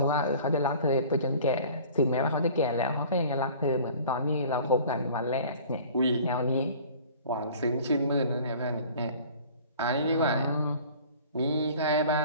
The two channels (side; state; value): both; inverted; correlation -0.46